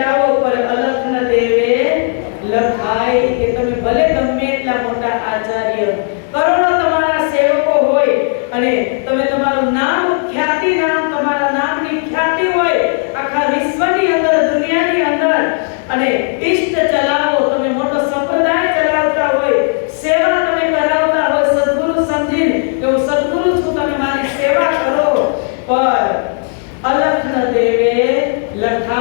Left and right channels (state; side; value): silent; right; 55 dB below the other